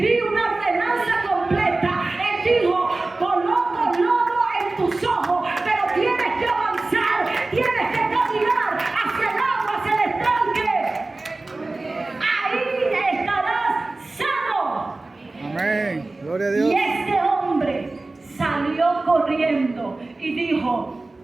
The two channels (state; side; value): quieter; left; 3.2 dB